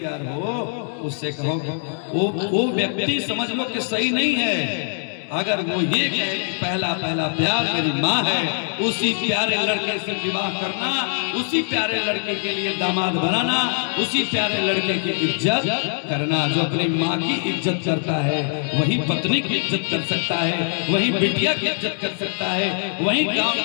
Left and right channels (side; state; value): right; silent; digital silence